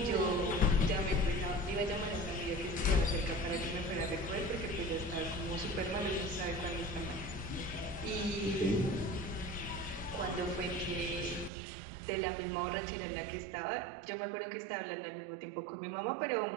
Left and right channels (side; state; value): left; drops out; at 11.5 s